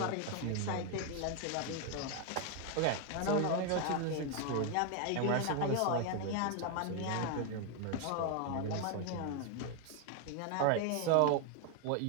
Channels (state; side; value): different; both; correlation 0.01